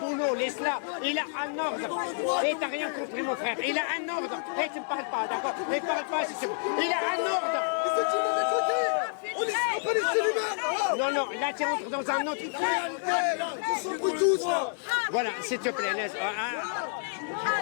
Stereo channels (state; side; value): silent; right; 59 dB below the other